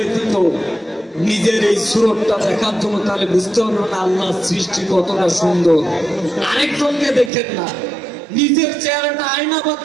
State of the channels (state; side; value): drops out; left; at 7.3 s